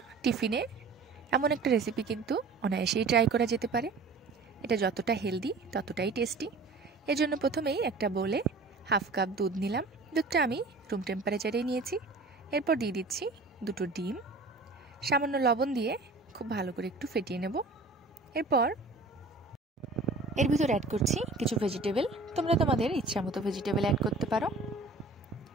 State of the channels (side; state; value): left; quieter; 3.6 dB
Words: টিফিনে এমন একটা রেসিপি কিন্তু অনায়াসেই ট্রাই করা যেতে পারে। এটা যতটা হেলদি ততটাই টেস্টি। এর জন্য প্রথমেই একটা বোলে হাফ কাপ দুধ নিলাম। দুধটা আমি রুম টেম্পারেচারেই নিয়েছি। এরপর দিয়ে দিচ্ছি দুটো ডিম, সামান্য লবণ দিয়ে খুব ভালো করে একটু ফেটিয়ে নেব। এরপর এর ভিতর অ্যাড করছি কিছু ভেজিটেবল। তোমরা তোমাদের ইচ্ছা মতো ভেজিটেবল অ্যাড করতে পারো।